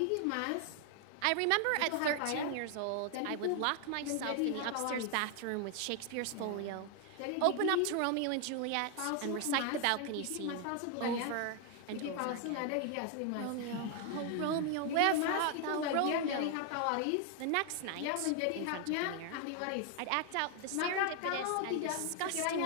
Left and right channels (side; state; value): both; different; correlation 0.00